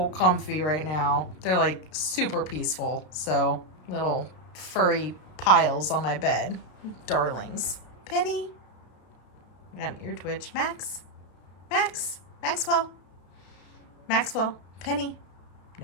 comfy right now. They're like super peaceful. So little furry piles on my bed. Darlings. Penny. I got an ear twitch. Maxwell. Penny.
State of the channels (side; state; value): right; late; 33 ms